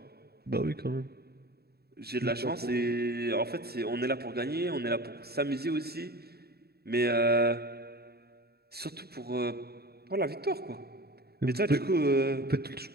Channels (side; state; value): left; late; 0.46 ms